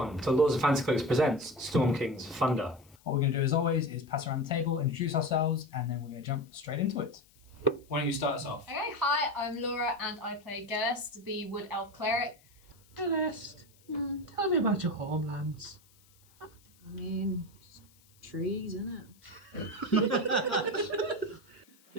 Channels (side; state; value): left; noise; hiss, 30 dB below the sound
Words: to Lords of Fancy Cloaks presents Storm King's Thunder. What we're going to do as always is pass around the table, introduce ourselves, and then we're going to jump straight into it. Why don't you start us off? Okay, hi, I'm Laura and I play Gelest, the Wood Elf Cleric. Gelest, tell me about your homelands. I mean, just trees, innit?